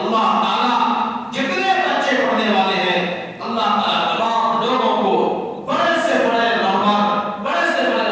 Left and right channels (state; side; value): identical; both; correlation 1.00